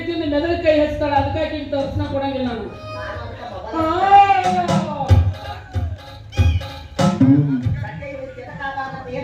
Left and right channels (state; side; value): identical; both; correlation 1.00